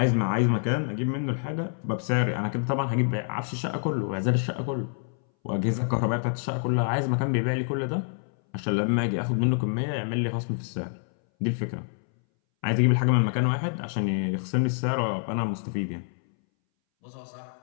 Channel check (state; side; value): silent; right; 60 dB below the other